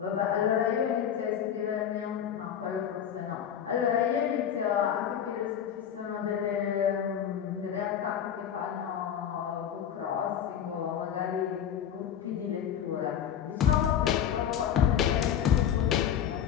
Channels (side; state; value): right; quieter; 9.1 dB